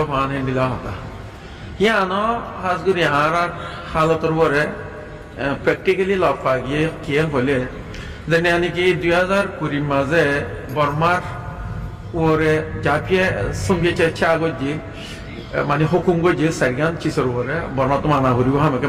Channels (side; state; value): both; identical; correlation 1.00